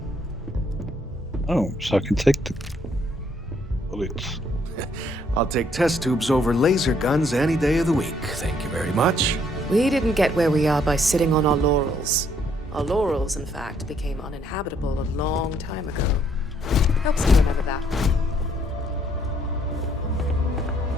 Oh, so I can take the bullets. I'll take test tubes over laser guns any day of the week. Thank you very much. We didn't get where we are by sitting on our laurels. Our laurels, in fact, became uninhabitable a long time ago. Helps me remember that.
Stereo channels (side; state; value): both; normal; correlation 0.68